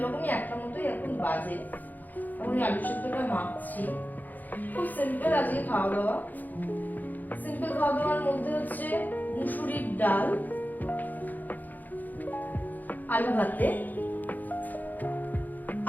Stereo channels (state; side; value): late; right; 0.084 ms